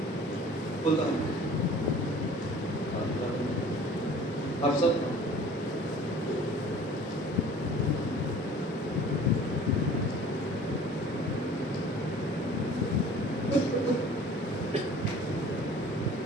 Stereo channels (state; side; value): normal; both; correlation 0.47